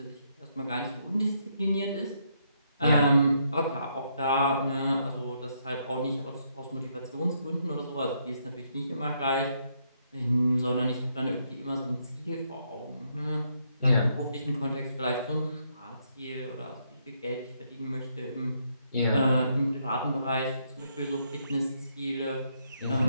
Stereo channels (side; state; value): both; inverted; correlation -0.75